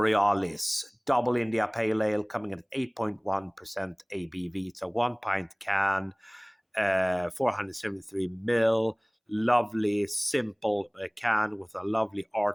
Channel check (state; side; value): identical; both; correlation 1.00